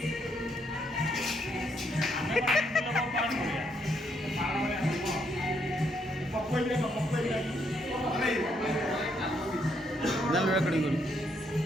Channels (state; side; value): normal; both; correlation 0.74